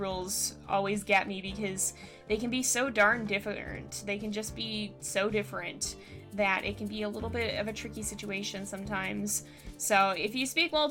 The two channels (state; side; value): identical; both; correlation 1.00